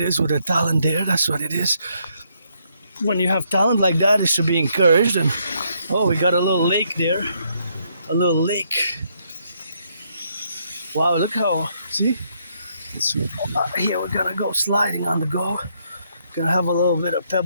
is with the talent there. That's what it is. When you have talent like that, it should be encouraged. And we got a little lake there. A little lake. Wow, look how, see? Here we're gonna go sliding on the go. Gonna have a little bit of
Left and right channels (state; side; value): inverted; both; correlation -0.73